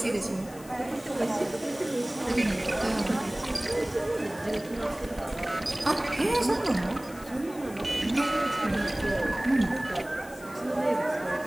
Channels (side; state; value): left; noise; hiss, 20 dB below the sound